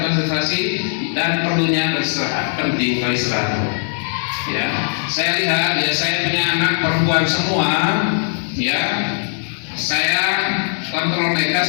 dan perlunya beristirahat. Penting beristirahat. Ya, saya lihat ya, saya punya anak perempuan semua, ya, saya kontrol mereka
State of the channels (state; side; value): silent; right; digital silence